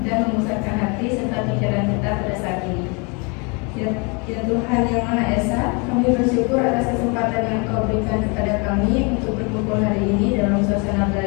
dan memusatkan hati serta pikiran kita pada saat ini. Ya Tuhan yang Maha Esa, kami bersyukur atas kesempatan yang Kau berikan kepada kami untuk berkumpul hari ini dalam suasana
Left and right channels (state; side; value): quieter; right; 31.9 dB